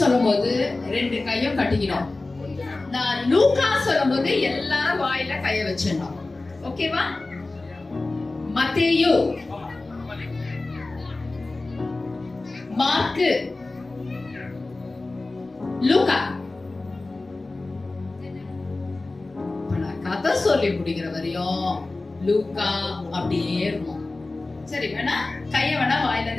சொல்லும்போது 2 கையும் கட்டிக்கணும். நான் லூக்கா சொல்லும்போது எல்லாரும் வாயில கைய வச்சிடணும். ஓகேவா? மத்தேயு, மார்க்கு, லூக்கா. நான் கதை சொல்லி முடிக்கிற வரையும் லூக்கா அப்படியே இருக்கும். சரி, வேணா கைய வேணா வாயில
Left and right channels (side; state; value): right; quieter; 3.2 dB